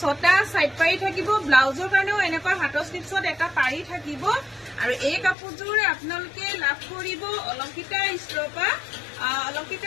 সাইড পাৰি থাকিব ব্লাউজৰ কাৰণেও এনেকৈ হাতৰ স্লিপছত এটা পাৰি থাকিব আৰু এই কাপোৰযোৰ আপোনালোকে লাভ কৰিব অলংকিতা ষ্ট'ৰৰ পৰা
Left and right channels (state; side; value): drops out; right; at 5.4 s